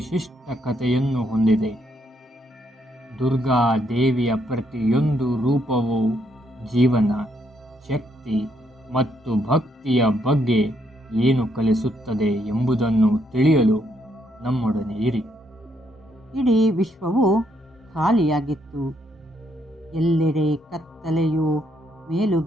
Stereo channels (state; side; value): normal; both; correlation 0.74